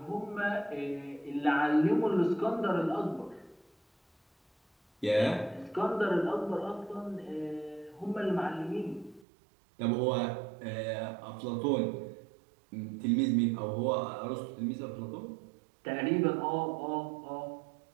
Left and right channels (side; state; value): left; drops out; at 9.2 s